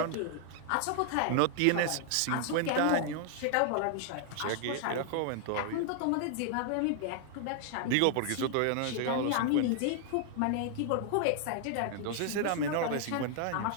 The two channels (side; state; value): both; different; correlation 0.00